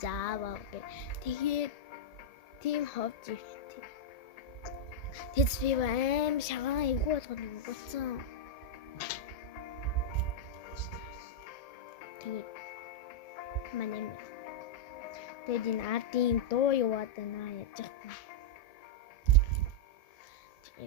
зааваа гэ. Тэгээд тийм ховж ивтэй. Тэд би аим шагаан эвгүй болгоод өгсөн. Тэгээд манай тэгээд энэ ардын дуу яваад байна яаж яах вэ?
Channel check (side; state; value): right; late; 1.7 ms